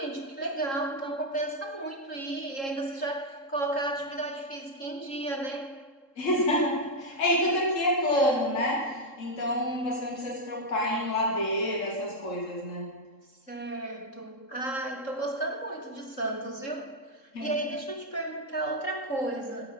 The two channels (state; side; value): late; right; 3.7 ms